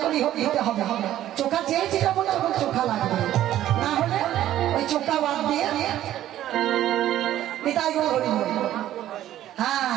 করে দিতে হবে। চোখা চেয়েছি তখন তখন চোখা লাগবে, না হলে ওই চোখা বাদ দিয়ে হ্যাঁ।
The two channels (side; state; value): left; quieter; 12.8 dB